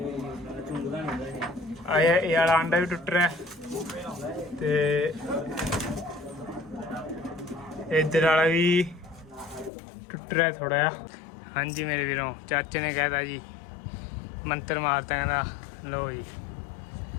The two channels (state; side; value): drops out; right; at 9.7 s